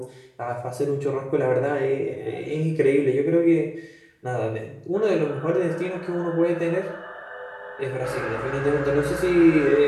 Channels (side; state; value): both; identical; correlation 1.00